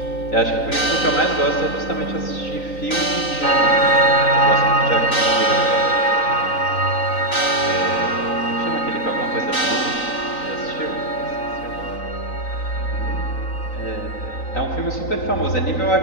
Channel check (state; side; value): late; right; 3.9 ms